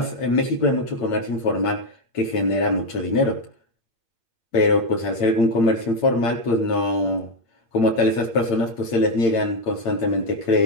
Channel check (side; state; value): right; late; 8.9 ms